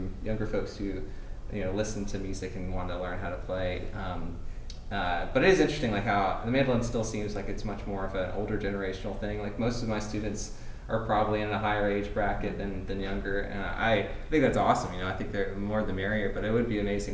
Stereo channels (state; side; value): identical; both; correlation 1.00